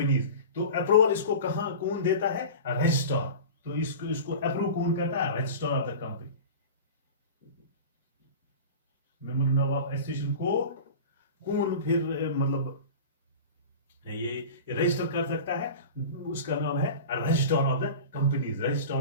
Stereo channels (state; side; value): inverted; both; correlation -0.33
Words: तो अप्रूवल इसको कौन देता है, रजिस्ट्रार। तो इसको अप्रूव कौन करता है, register of the company. Memorandum of association को कौन फिर मतलब ये रजिस्टर कर सकता है, उसका नाम है registrar of the companies,